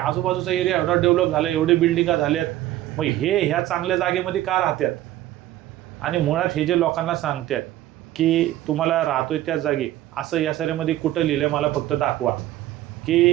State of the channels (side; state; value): left; quieter; 14.4 dB